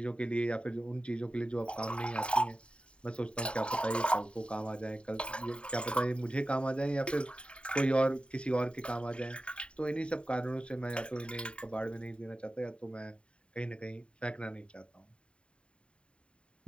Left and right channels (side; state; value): right; late; 0.056 ms